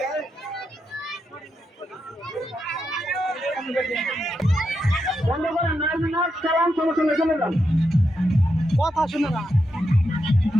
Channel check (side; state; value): both; normal; correlation 0.84